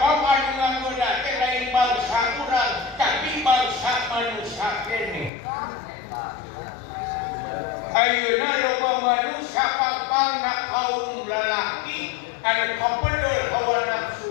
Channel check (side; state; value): right; drops out; at 5.3 s